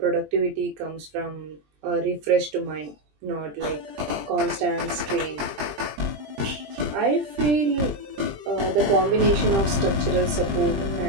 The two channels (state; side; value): late; left; 20 ms